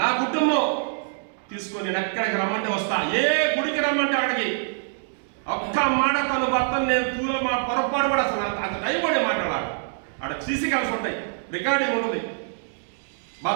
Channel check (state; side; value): silent; left; digital silence